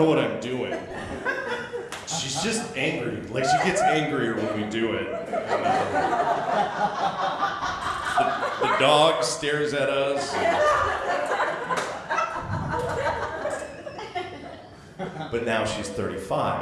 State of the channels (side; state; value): both; identical; correlation 1.00